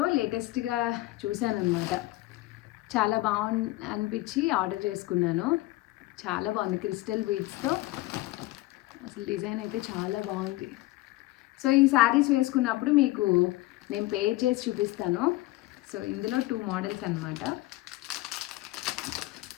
లేటెస్ట్గా చూశాను అనమాట. చాలా అనిపించి ఆర్డర్ చేసుకున్నాను. చాలా బాగుంది క్రిస్టల్ బీడ్స్తో. అసలు డిజైన్ అయితే చాలా బాగుంది. సో ఈ శారీస్ వేసుకున్నప్పుడు మీకు నేను పేర్ చేసి చూపిస్తాను. సో ఇందులో 2 మోడల్స్ అనమాట.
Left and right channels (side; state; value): right; quieter; 18.6 dB